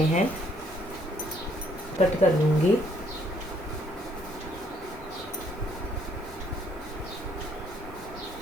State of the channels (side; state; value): both; normal; correlation 0.67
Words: हैं। कट कर लूँगी।